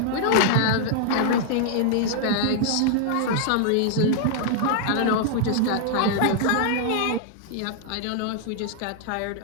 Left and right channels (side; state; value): both; different; correlation -0.01